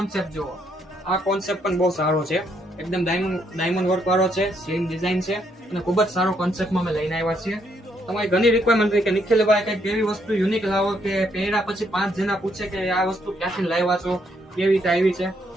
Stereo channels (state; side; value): normal; both; correlation 0.73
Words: જુઓ, આ કોન્સેપ્ટ પણ બહુ સારો છે, એકદમ ડાયમંડ વર્ક વાળો છે, સેમ ડિઝાઇન છે અને ખૂબ જ સારો કોન્સેપ્ટમાં અમે લઈને આવ્યા છીએ. તમારી ઘણી રિક્વાયરમેન્ટ કે નિખિલભાઈ કઈક એવી વસ્તુ યુનિક લાવો કે પહેર્યા પછી 5 જણા પૂછે કે આ વસ્તુ ક્યાંથી લાવ્યા છો, કેવી રીતે આવી છે,